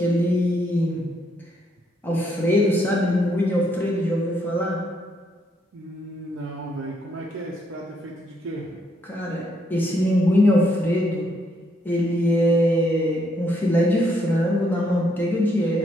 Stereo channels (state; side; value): normal; both; correlation 0.73